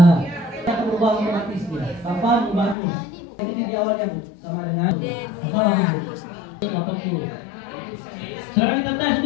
kita akan berubah otomatis dia. Kapan bagus? Ini di awalnya Bu, sama dengan atau lagi Bu? 80. Sekarang kita tes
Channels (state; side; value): drops out; right; at 2.8 s